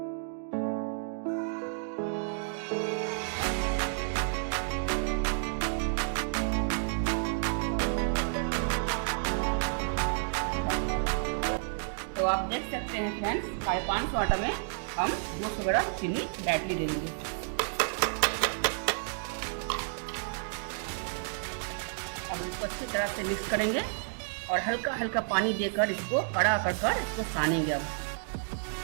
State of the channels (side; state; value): left; silent; digital silence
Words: तो आप देख सकते हैं फ्रेंड्स, 550 आटा में हम 200 ग्राम चीनी डायरेक्टली दे देंगे। अब इसको अच्छी तरह से मिक्स करेंगे और हल्का हल्का पानी देकर इसको कड़ा कर इसको सानेंगे। अब